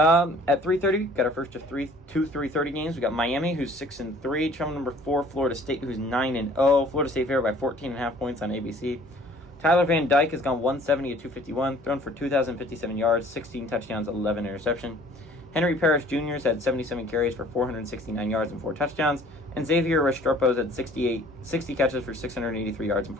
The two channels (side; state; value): both; normal; correlation 0.53